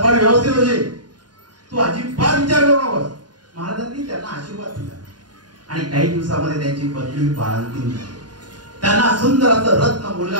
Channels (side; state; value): left; late; 0.70 ms